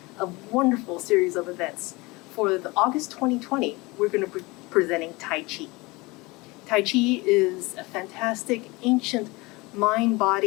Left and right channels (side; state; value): right; quieter; 23.9 dB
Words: a wonderful series of events. For the August 2020, we're going to be presenting Tai Chi. Tai Chi is a fantastic ancient